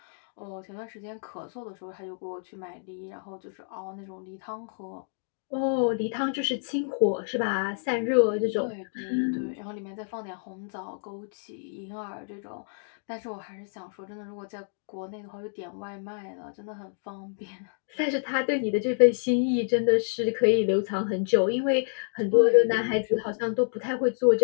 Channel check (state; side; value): silent; right; digital silence